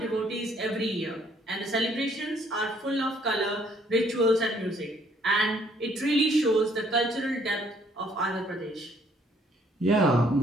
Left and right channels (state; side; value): normal; both; correlation 0.65